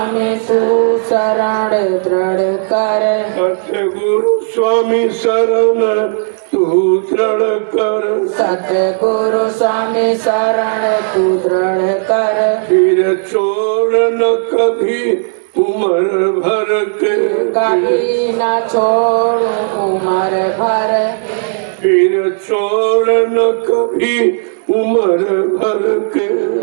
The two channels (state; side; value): silent; left; digital silence